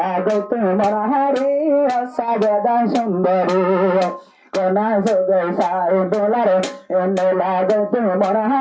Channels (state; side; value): identical; both; correlation 1.00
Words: গত মনহারি সাজেদা সুন্দরী কোনা সগে সাই ডলার মেলা গত